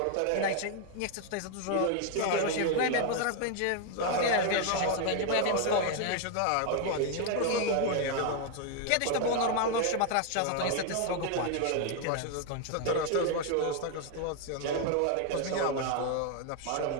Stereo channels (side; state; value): both; different; correlation 0.01